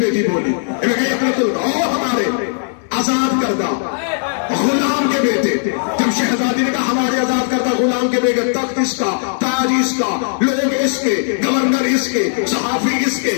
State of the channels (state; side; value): silent; right; digital silence